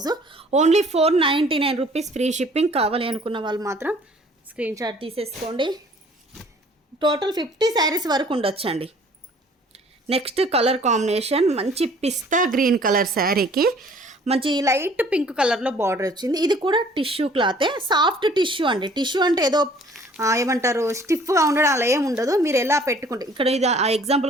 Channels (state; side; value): normal; both; correlation 0.54